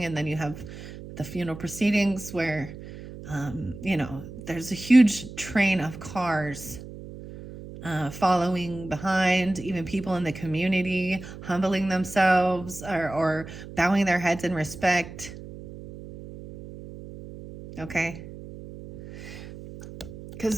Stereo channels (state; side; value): noise; right; hum, 13 dB below the sound